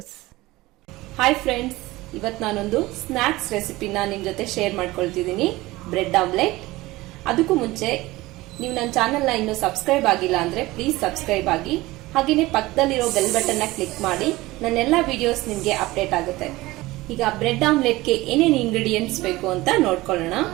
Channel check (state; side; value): quieter; left; 19.3 dB